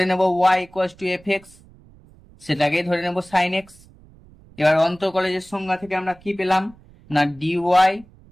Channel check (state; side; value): noise; right; rumble, 25 dB below the sound